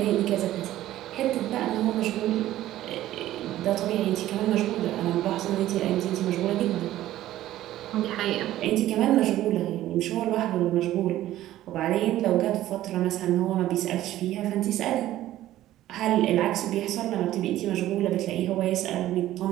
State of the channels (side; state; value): left; quieter; 14.1 dB